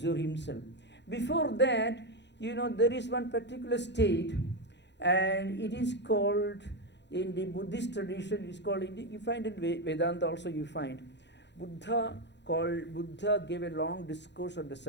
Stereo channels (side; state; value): right; late; 0.51 ms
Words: himself. Before that, there is one particular state, and it is called, in the Buddhist tradition, it is called, you find in Vedanta also you find, Buddha gave a long discourse on the